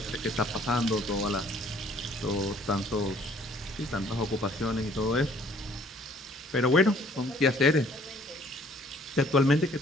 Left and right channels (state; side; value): normal; both; correlation 0.59